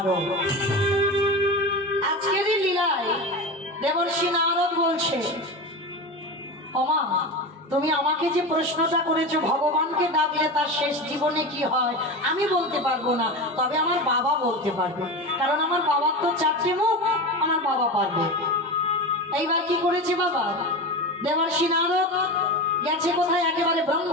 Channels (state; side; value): normal; both; correlation 0.25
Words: আজকেরই লীলায় দেবর্ষি নারদ বলছে, ওমা তুমি আমাকে যে প্রশ্নটা করেছো ভগবানকে ডাকলে তার শেষ জীবনে কি হয়, আমি বলতে পারবো না, তবে আমার বাবা বলতে পারবে, কারণ আমার বাবার তো চারটে মুখ, আমার বাবা পারবে। এইবার কি করেছে বাবা? দেবর্ষি নারদ গেছে কোথায়? একেবারে